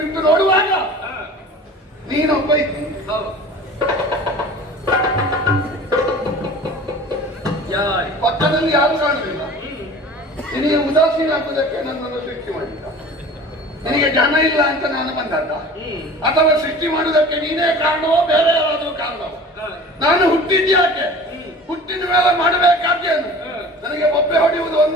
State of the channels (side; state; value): both; normal; correlation 0.41